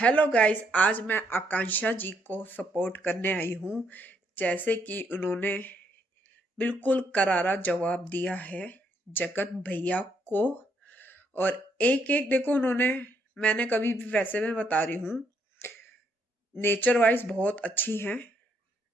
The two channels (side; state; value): both; normal; correlation 0.73